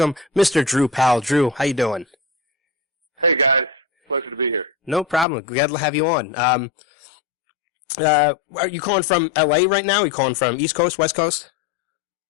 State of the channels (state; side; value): drops out; right; at 5.2 s